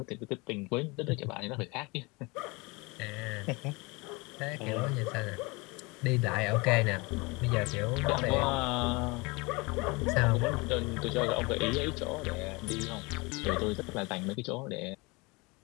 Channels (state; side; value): quieter; right; 26.2 dB